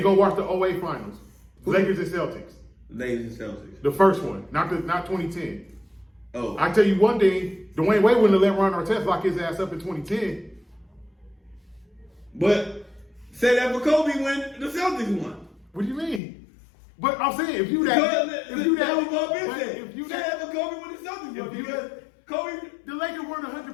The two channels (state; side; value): drops out; right; at 16.2 s